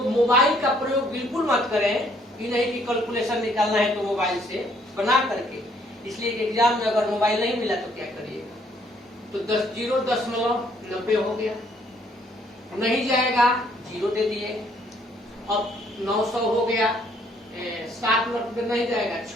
मोबाइल का प्रयोग बिल्कुल मत करें, ये नहीं कि कैलकुलेशन निकालना है तो मोबाइल से बना करके, इसलिए एग्जाम में अगर मोबाइल नहीं मिला तो क्या करिएगा। तो 0.90 हो गया, नहीं जाएगा 0 दे दिए। अब 900 हो गया, 7 मर्तबे नहीं जाएगा,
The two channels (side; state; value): both; normal; correlation 0.65